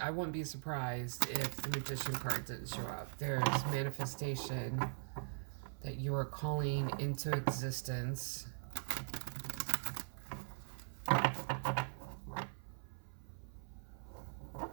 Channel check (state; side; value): silent; left; 50 dB below the other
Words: I wouldn't be surprised if the Magician card didn't show up. There's manifestation that you are calling into existence.